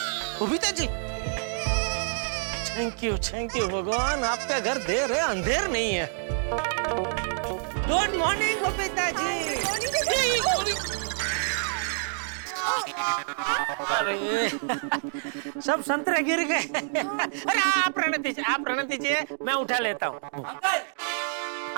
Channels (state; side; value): silent; left; digital silence